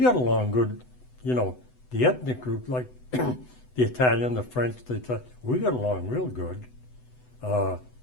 along good, you know. The ethnic group, like the Italian, the French, we got along real good.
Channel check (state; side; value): late; right; 8.0 ms